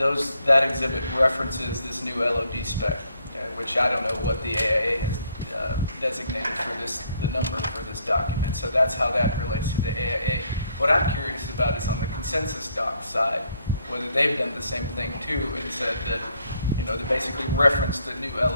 exhibit references this new LOD spec, which I don't know what the AIA has designated for the number for this document. So that's how that relates to the AIA. What I'm curious about is on the consensus doc side, whether they've done the same thing too and said that, they basically referenced the new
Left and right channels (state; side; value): inverted; both; correlation -0.70